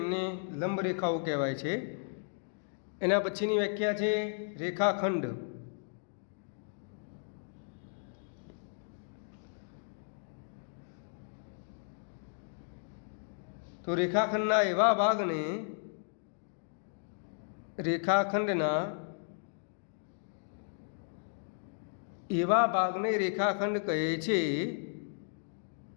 લંબ રેખાઓ કહેવાય છે. એના પછીની વ્યાખ્યા છે રેખાખંડ. તો રેખાખંડના એવા ભાગને રેખાખંડ કહે છે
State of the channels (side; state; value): right; silent; digital silence